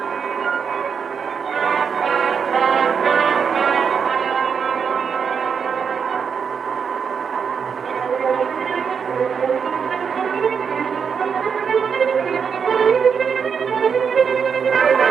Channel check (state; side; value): quieter; left; 6.5 dB